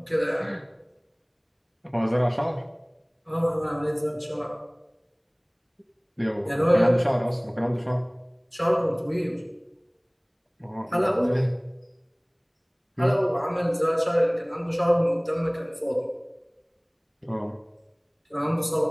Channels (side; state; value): both; identical; correlation 1.00